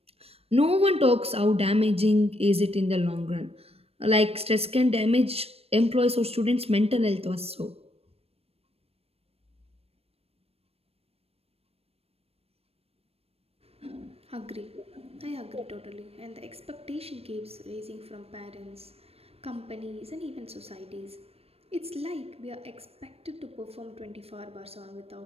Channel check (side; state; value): left; late; 0.29 ms